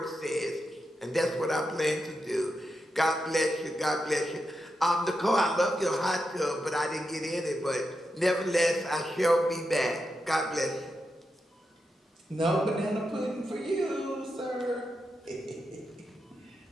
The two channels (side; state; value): both; normal; correlation 0.87